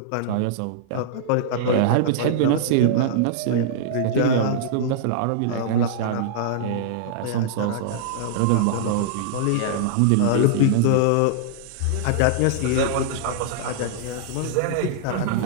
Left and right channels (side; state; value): both; different; correlation -0.01